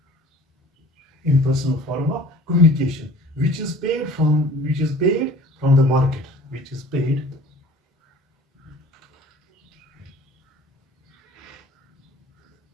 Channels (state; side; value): normal; both; correlation 0.47